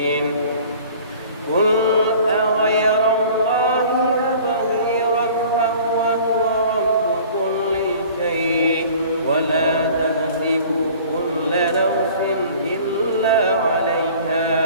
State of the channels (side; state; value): both; inverted; correlation -0.47